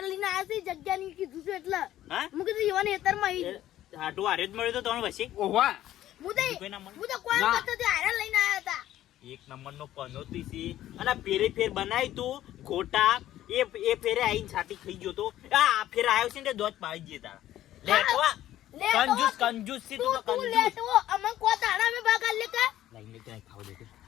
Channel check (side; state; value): right; quieter; 13.3 dB